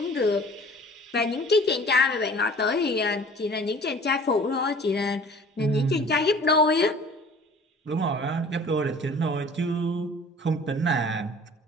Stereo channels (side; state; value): both; normal; correlation 0.47